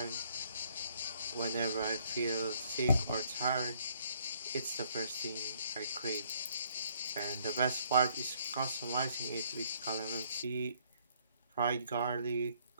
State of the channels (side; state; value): both; inverted; correlation -0.65